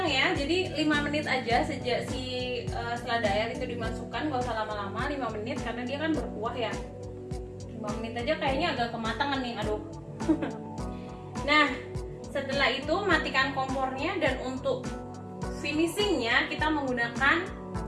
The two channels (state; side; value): identical; both; correlation 1.00